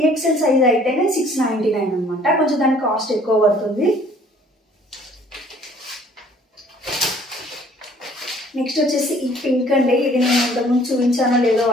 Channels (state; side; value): normal; both; correlation 0.56